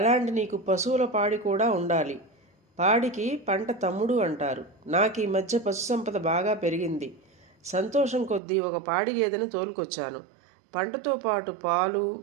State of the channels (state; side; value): drops out; left; at 8.4 s